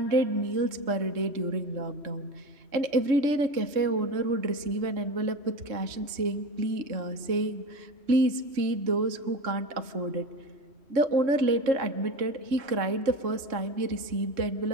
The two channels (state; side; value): late; left; 3.6 ms